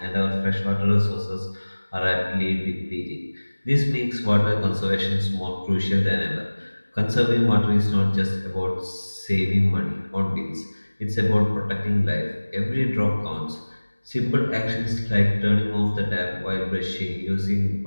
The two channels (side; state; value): both; inverted; correlation -1.00